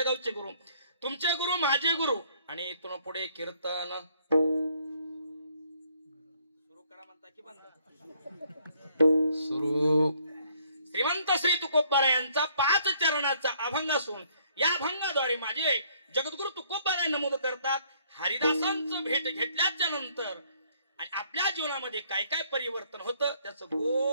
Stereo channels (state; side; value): inverted; both; correlation -0.65